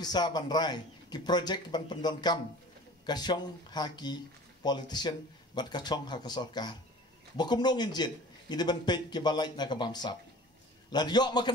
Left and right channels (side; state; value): both; normal; correlation 0.43